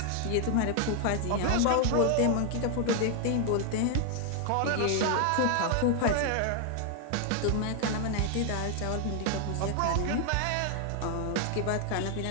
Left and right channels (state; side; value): different; both; correlation 0.00